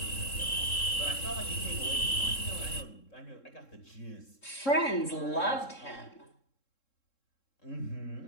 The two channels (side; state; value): right; late; 3.7 ms